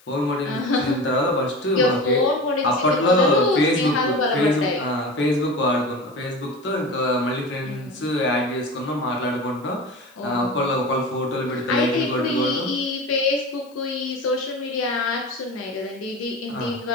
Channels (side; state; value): left; noise; hiss, 30 dB below the sound